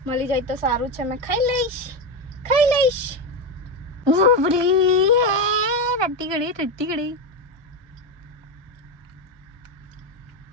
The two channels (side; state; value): left; late; 1.2 ms